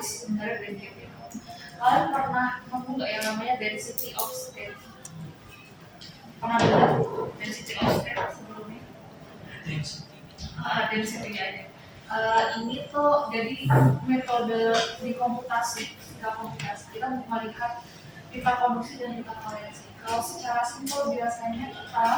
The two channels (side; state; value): both; identical; correlation 1.00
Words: sih sebenarnya band gap itu? Kalian pernah nemu nggak yang namanya density of state? Pernah dengar density of state sebelumnya? Density aja. Ini tuh jadi metode di komputasi, kita melihat pita konduksi dan pita valensi. Kalau secara simpel biasanya kita